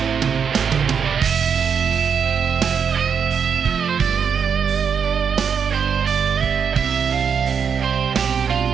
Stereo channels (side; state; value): left; quieter; 6.8 dB